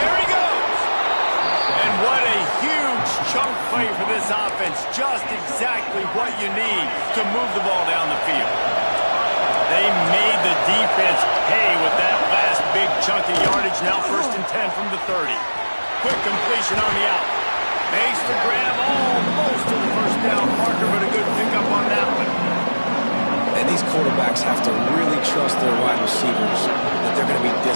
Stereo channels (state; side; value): inverted; both; correlation -1.00